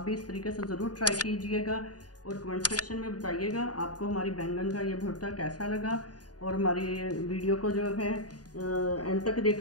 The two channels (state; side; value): late; right; 0.68 ms